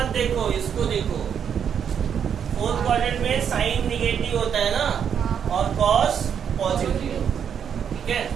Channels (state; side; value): quieter; left; 8.0 dB